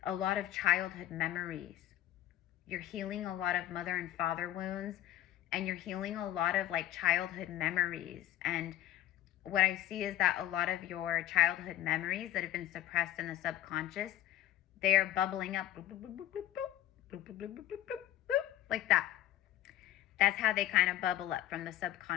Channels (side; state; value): right; quieter; 13.4 dB